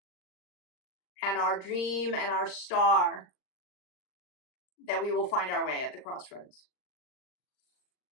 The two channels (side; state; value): right; late; 39 ms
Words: and our dream and our star that we will find our way at the crossroads.